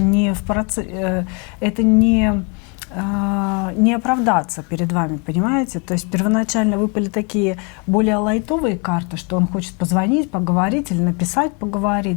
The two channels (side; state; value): right; quieter; 33.9 dB